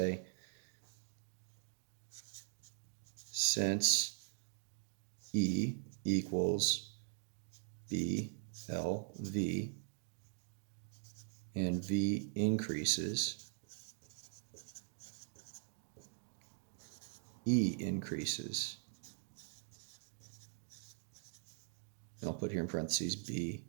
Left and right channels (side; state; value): left; silent; digital silence